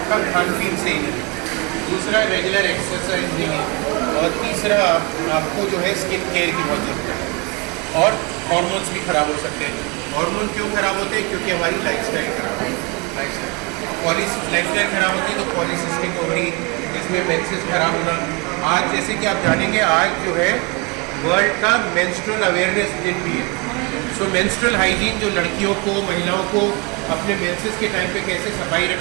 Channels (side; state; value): left; quieter; 28.3 dB